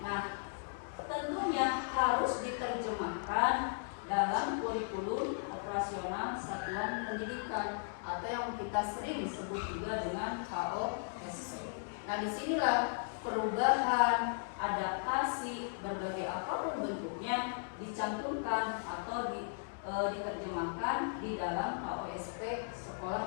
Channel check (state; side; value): silent; right; digital silence